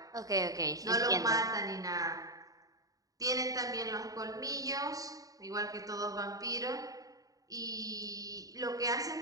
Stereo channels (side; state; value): left; late; 0.17 ms